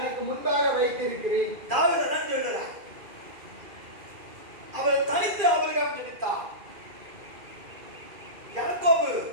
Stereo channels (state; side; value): late; left; 2.4 ms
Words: முன்பாக வைத்திருக்கிறேன். தாவீது தான் சொல்றார். அவர் தனித்து ஆபிரகாம் ஜெபித்தார். யாக்கோபு